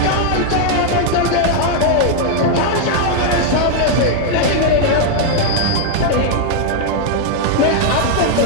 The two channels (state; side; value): different; both; correlation 0.00